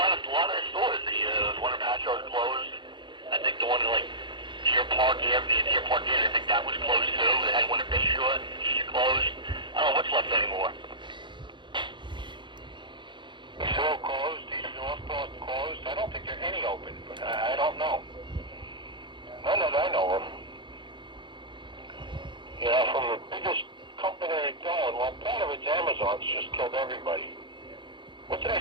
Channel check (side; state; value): left; late; 0.23 ms